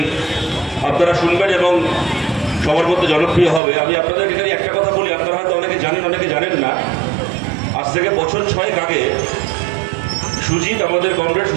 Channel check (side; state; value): left; drops out; at 3.6 s